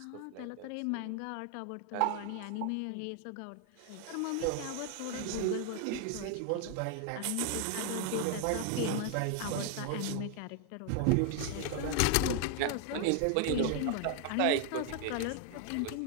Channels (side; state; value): both; different; correlation 0.00